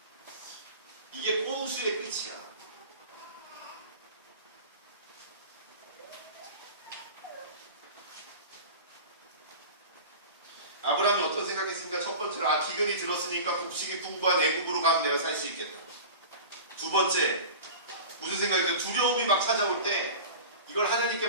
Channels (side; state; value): both; inverted; correlation -0.35